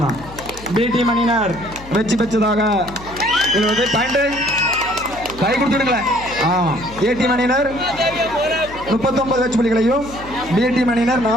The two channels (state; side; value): noise; left; hum, 16 dB below the sound